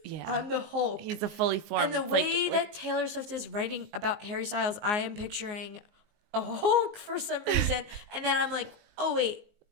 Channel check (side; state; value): left; late; 19 ms